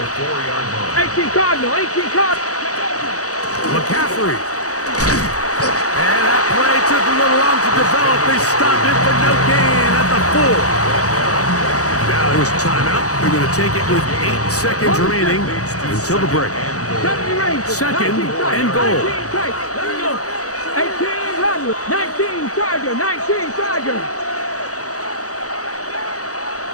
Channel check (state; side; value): late; right; 0.66 ms